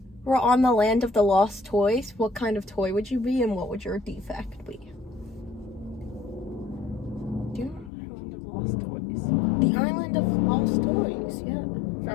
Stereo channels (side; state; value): right; drops out; at 7.9 s